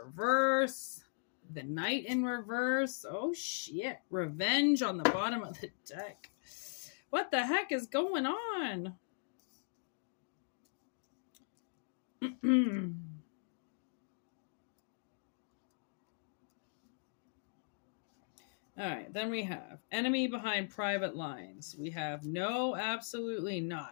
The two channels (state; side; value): silent; right; digital silence